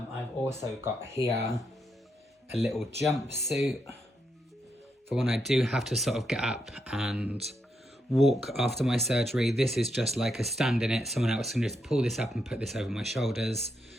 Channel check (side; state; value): both; normal; correlation 0.81